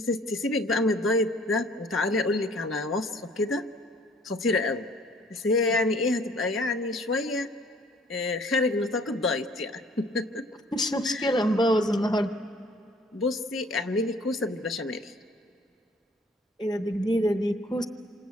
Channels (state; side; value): normal; both; correlation 0.56